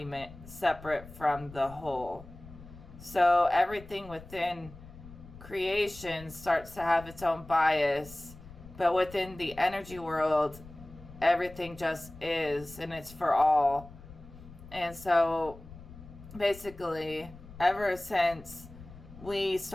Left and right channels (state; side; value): noise; left; rumble, 17 dB below the sound